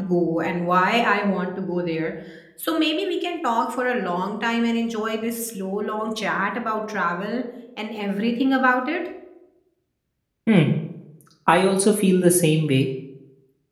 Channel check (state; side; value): identical; both; correlation 1.00